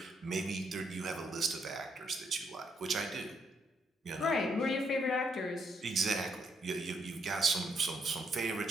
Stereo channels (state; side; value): normal; both; correlation 0.75